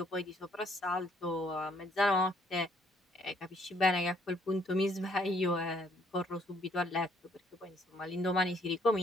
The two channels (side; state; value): both; normal; correlation 0.66